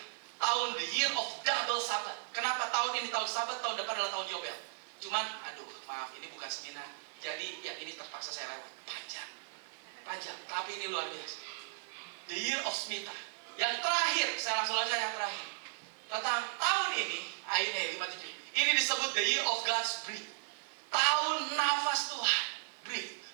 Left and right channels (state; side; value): silent; left; 54 dB below the other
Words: Tahun the year of double Sabat. Kenapa tahun ini tahun Sabat, tahun depan adalah tahun Yobel? Cuman, aduh maaf, ini bukan seminar. Jadi yang ini terpaksa saya lewat. Panjang, tapi ini luar biasa. The year of Shemitah. Yang terakhir, saya langsung aja yang terakhir. Tentang tahun ini, ayatnya 5:7. Ini disebut the year of God's breath. Tahun nafas Tuhan. Breath.